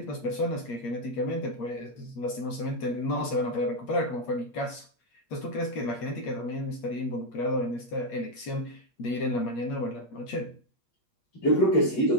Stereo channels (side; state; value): right; late; 8.5 ms